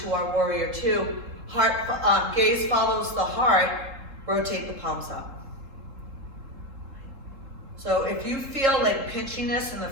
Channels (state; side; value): late; left; 3.7 ms